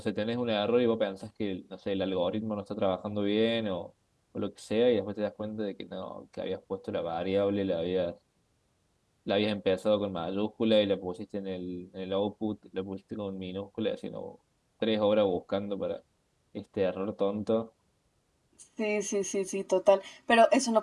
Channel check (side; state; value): both; identical; correlation 1.00